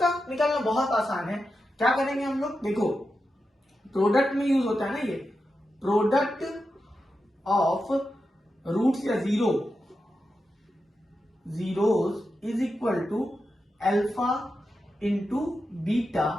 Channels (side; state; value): both; normal; correlation 0.89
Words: निकालना बहुत आसान है, क्या करेंगे हम लोग, देखो प्रोडक्ट में यूज होता है ना, ये प्रोडक्ट ऑफ रूट्स या zeros is equal to alpha into